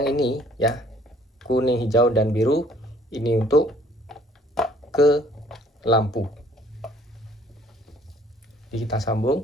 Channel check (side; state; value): both; normal; correlation 0.59